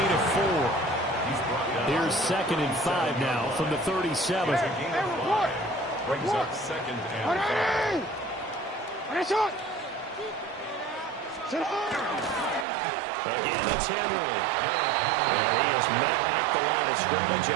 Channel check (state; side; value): drops out; left; at 12.7 s